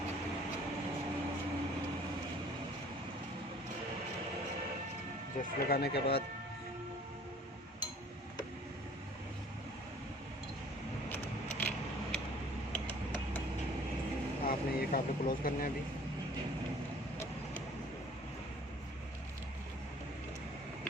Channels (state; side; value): normal; both; correlation 0.52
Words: जस्ट लगाने के बाद आपने ये काबले क्लोज करने हैं। अभी